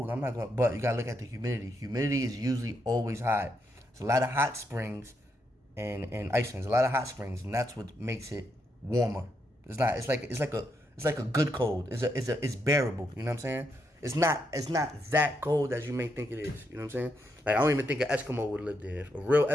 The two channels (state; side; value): normal; both; correlation 0.80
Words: I'm not going to, but you got to look at the humidity. Humidity is usually always high. It's a lot of hot springs in Iceland. There's a lot of hot springs, and that's what makes it warmer. It's not. It's like It's like a good cold. It's bearable. You know what I'm saying? It's not that cold as you may think it is. You know what I'm saying? Like I don't even think an Eskimo would live there. A real